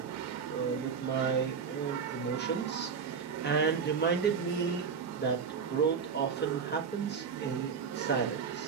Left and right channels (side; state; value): left; quieter; 6.2 dB